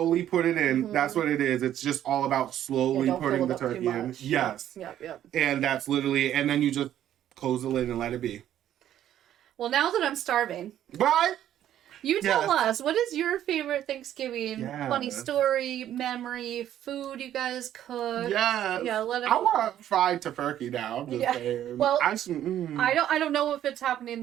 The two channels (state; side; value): quieter; left; 11.5 dB